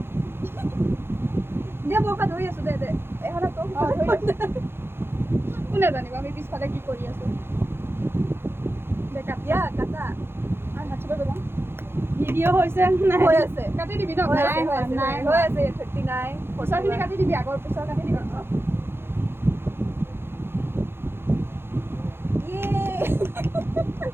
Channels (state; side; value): late; left; 0.11 ms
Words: দে মই ধৰি আছোঁ দে দে এখনত তোক কোনে জানিব আমি পিছফালে কি কৰি আছো দে ইয়া কাটা আৰু হাত চুব যাম ভিডিঅ' হৈছে নাই হৈ আছে কাটি দিবি ন নাই হৈ আছে 39 পিছৰখিনি কাটি দিবি আগৰ পিছৰ কাটি দিবি